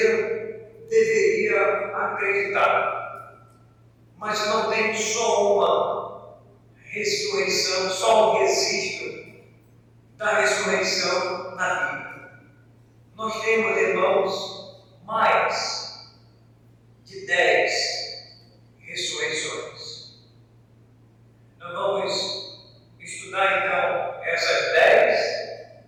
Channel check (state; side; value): identical; both; correlation 1.00